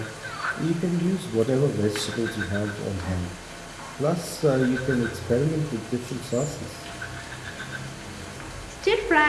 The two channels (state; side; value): identical; both; correlation 1.00